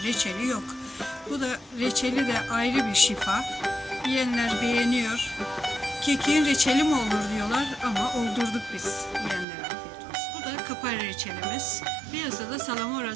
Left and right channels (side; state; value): left; drops out; at 9.5 s